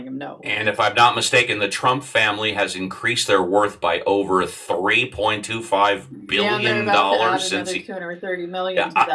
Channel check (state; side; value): identical; both; correlation 1.00